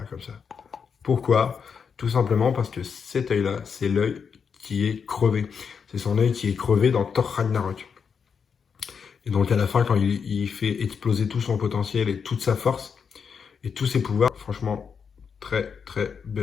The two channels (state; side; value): quieter; right; 6.4 dB